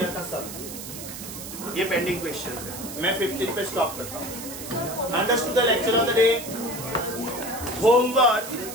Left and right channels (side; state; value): right; noise; hiss, 10 dB below the sound